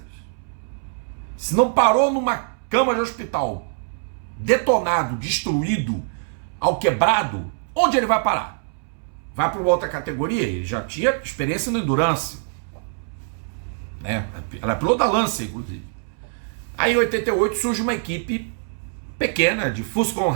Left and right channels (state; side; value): silent; left; 63 dB below the other